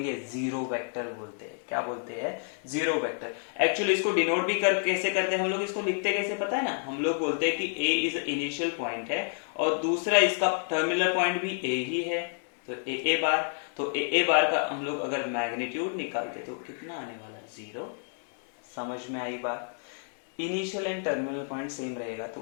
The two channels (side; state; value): right; silent; 58 dB below the other